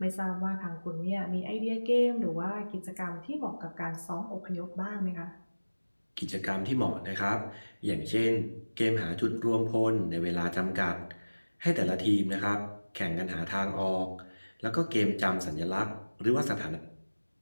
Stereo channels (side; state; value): both; inverted; correlation -1.00